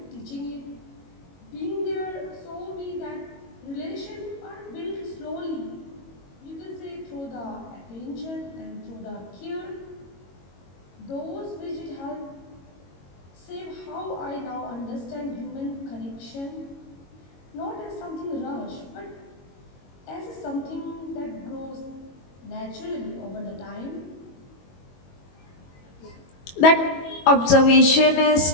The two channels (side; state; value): right; late; 22 ms